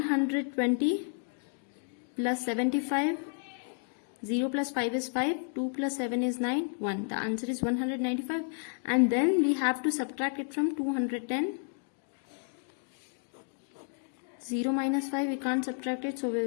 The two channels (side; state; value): right; silent; 57 dB below the other